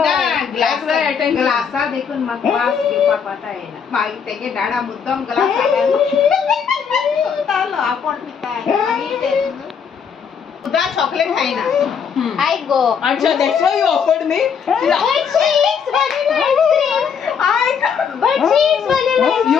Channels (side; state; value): right; quieter; 6.9 dB